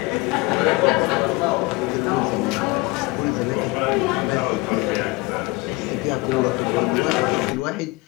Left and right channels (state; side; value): quieter; right; 23.8 dB